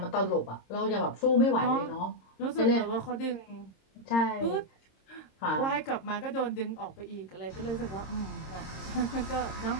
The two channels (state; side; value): late; right; 26 ms